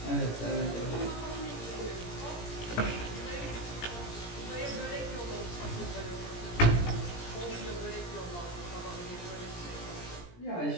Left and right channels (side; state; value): right; late; 17 ms